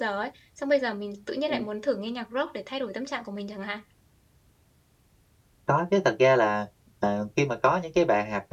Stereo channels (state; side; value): identical; both; correlation 1.00